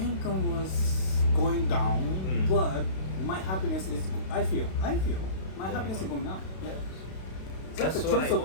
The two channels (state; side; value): late; right; 32 ms